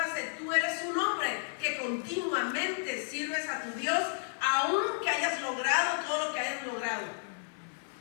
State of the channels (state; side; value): silent; right; digital silence